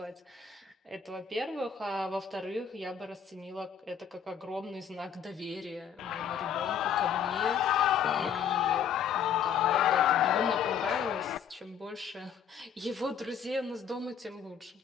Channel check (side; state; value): right; quieter; 7.8 dB